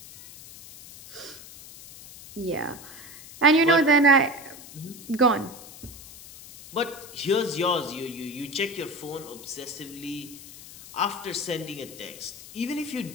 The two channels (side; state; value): left; noise; hiss, 16 dB below the sound